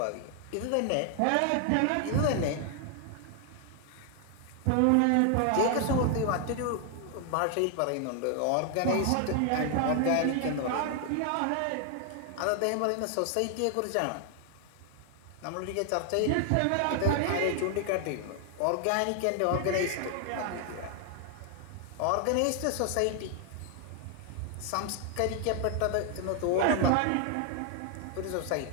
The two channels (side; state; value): both; different; correlation 0.00